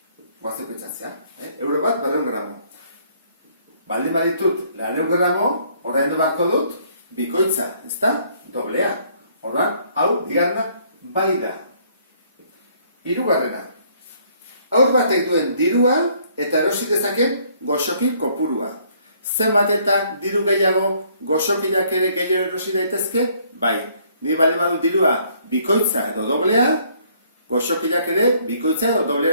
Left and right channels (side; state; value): both; inverted; correlation -0.64